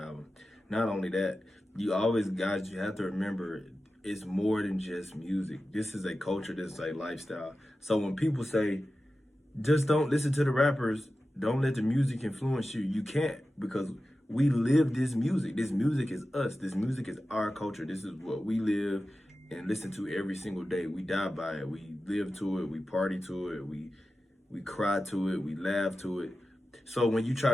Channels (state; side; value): normal; both; correlation 0.93